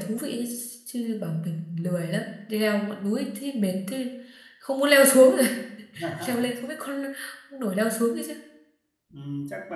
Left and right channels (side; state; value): both; identical; correlation 1.00